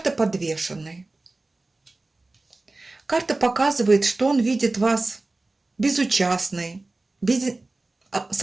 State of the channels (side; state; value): left; quieter; 3.1 dB